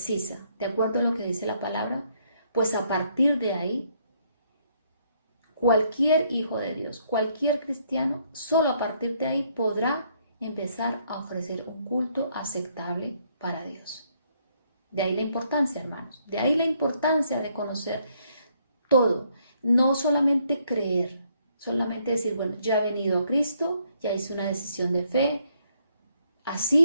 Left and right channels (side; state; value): both; inverted; correlation -0.70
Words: de acuerdo a lo que dice la palabra, pues a partir de ahí, cualquier hijo de Dios, cualquier cristiano, solo a partir de ahí podrá empezar a ofrecer un culto aceptable para Dios. De ahí la importancia, hermanos, de ahí la importancia de conocer todo, no solamente creer, solamente decir, bueno, ya he venido a Cristo, ya hice una decisión de fe,